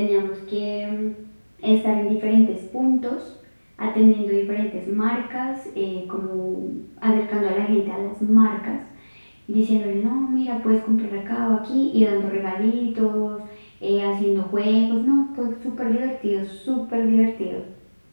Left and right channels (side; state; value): both; inverted; correlation -1.00